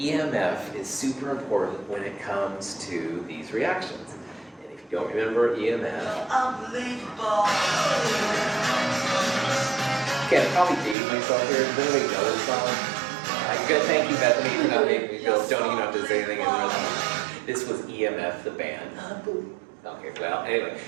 is super important when it comes to these reactions. And if you don't remember EMF... Unbelievable! Okay, I'll probably date myself here. Does anybody know this song? Good, thank you, Bethany, for not making me go, don't even have to say anything in the rest. This was EMF, the band. Unbelievable. Okay, well, anyway,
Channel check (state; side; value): drops out; left; at 11.0 s